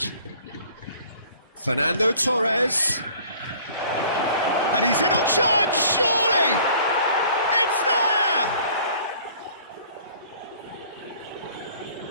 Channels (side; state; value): both; inverted; correlation -0.52